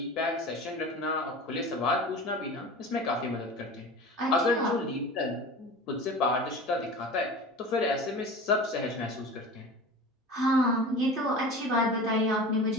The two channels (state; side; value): normal; both; correlation 0.35